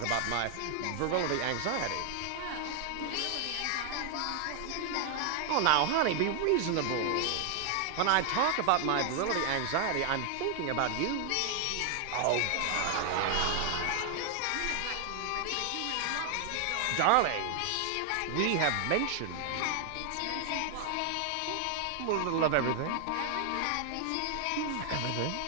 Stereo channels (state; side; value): different; both; correlation 0.00